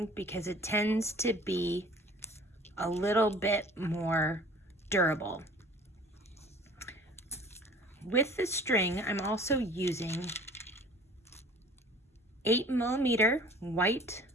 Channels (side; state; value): both; normal; correlation 0.48